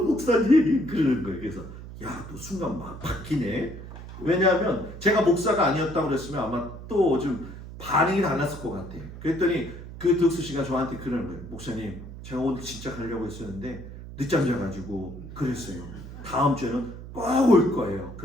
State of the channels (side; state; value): right; noise; hum, 13 dB below the sound